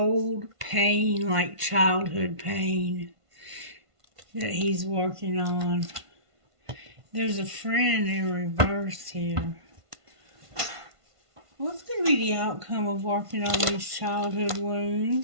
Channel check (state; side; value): late; left; 1.5 ms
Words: pain, like childhood pain, that he's working on. There's a friend in reverse here. What's going to be the outcome of working on these childhood